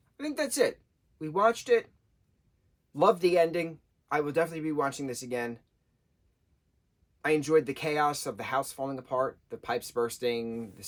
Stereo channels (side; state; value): both; identical; correlation 1.00